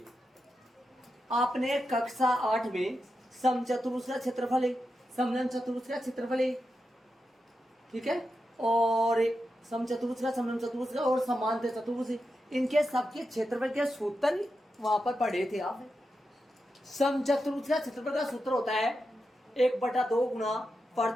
आपने कक्षा 8 में समचतुर्भुज का क्षेत्रफल है, समलंब चतुर्भुज का क्षेत्रफल है, ठीक है, और समचतुर्भुज का, समलंब चतुर्भुज का और समांतर चतुर्भुज, इनके सबके क्षेत्रफल के सूत्र वहां पर पढ़े थे आप। समचतुर्भुज का क्षेत्रफल का सूत्र होता है 1/2 गुणा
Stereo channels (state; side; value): normal; both; correlation 0.88